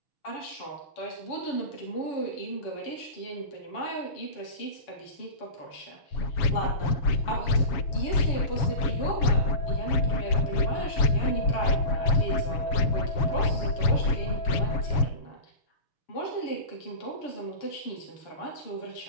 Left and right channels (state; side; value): late; right; 7.1 ms